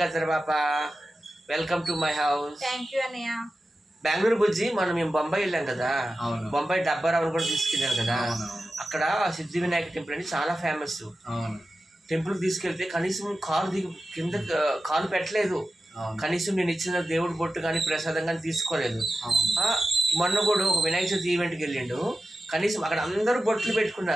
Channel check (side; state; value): both; normal; correlation 0.93